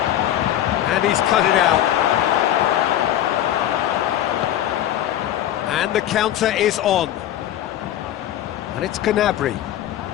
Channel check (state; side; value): quieter; right; 12.2 dB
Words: and he's cut it out. And the counter is on, and it's Gnabry.